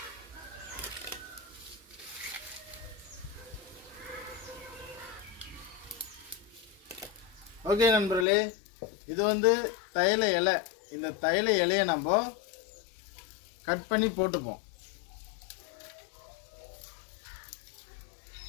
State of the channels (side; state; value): right; drops out; at 8.2 s